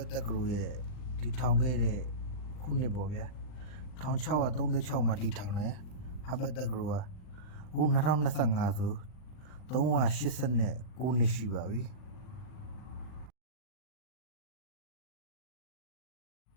တက္ကသိုလ်ရဲ့တည်ထောင်ခဲ့တဲ့ခုနှစ်ပေါ့ဗျာ1636မှာတည်ထောင်တယ်ဟာဗတ်တက္ကသိုလ်ကအခု2025ဆို389နှစ်ရှိပါပြီ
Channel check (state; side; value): late; right; 39 ms